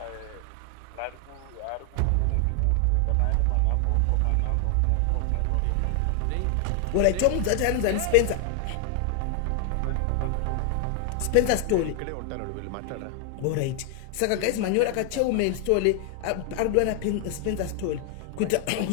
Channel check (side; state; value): both; different; correlation 0.00